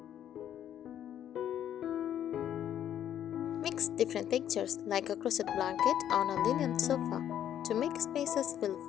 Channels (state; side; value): quieter; right; 10.4 dB